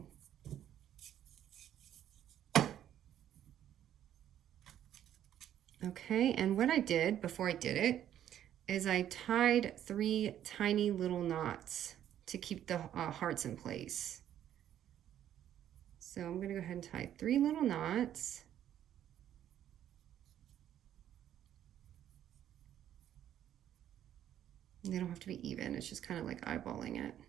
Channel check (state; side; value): quieter; left; 10.9 dB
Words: Okay, and what I did before I did it is I tied 3 tiny little knots to keep the hearts in place. So I'm going to go ahead and tie 3 little knots. They don't have to be even, it's just kind of like eyeballing it.